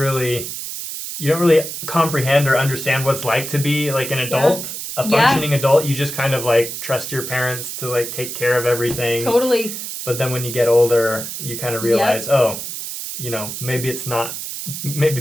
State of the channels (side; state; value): right; noise; hiss, 7 dB below the sound